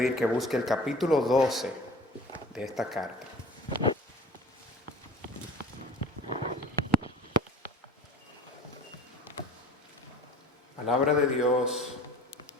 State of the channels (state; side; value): normal; both; correlation 0.43